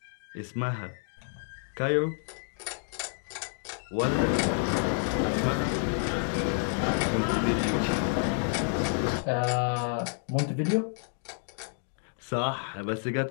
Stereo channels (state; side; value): silent; right; 58 dB below the other